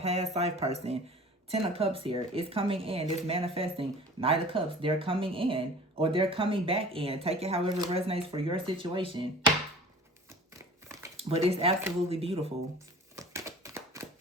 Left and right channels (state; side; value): normal; both; correlation 0.43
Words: life person. 10 of Cups here. It's coming in. It's manifesting. Knight of Cups. They're coming in. Or they're coming back in. Take it however it resonates for your situation. But it's absolutely beautiful.